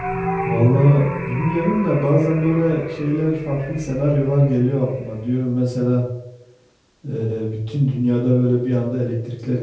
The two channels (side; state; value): both; identical; correlation 1.00